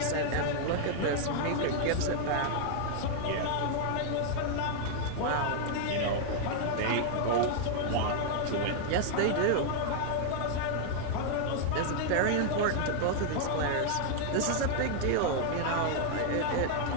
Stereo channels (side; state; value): both; different; correlation 0.00